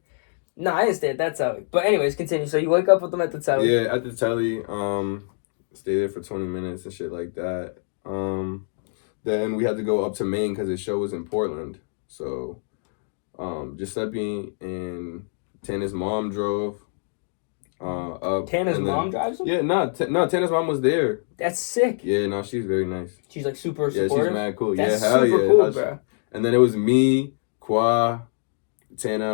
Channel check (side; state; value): right; silent; digital silence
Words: No, I didn't stay at that telly. But anyways, continue. So you wake up with them at the telly. Yeah, at the telly. Stay there for 20 minutes and shit like that. Then we had to go up to Maine because the show was in Portland. So, Giuseppe and Tana's mom drove up. Tana's mom drives them? Yeah, no, Tana's mom was there. That's sick. Yeah, no, she's very nice. She's like super Yeah, supportive. she's mad cool. That's yeah, hell super yeah. cool, bro. And then it was me, Kwa,